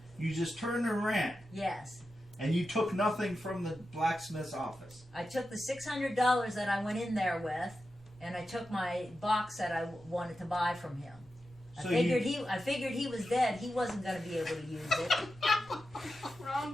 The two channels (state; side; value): normal; both; correlation 0.90